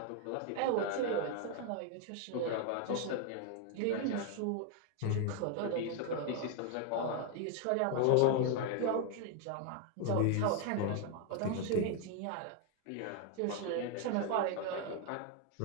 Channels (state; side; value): different; both; correlation 0.00